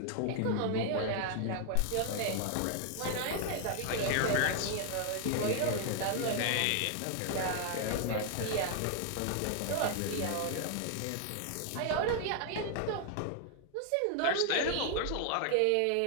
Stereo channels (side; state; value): both; different; correlation 0.00